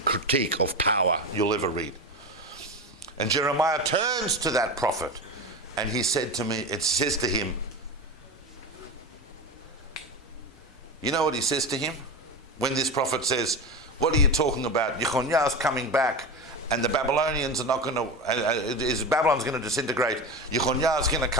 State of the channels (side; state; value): both; normal; correlation 0.23